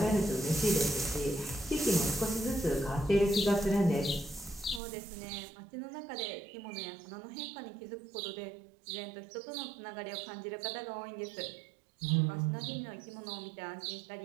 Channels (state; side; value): drops out; left; at 4.8 s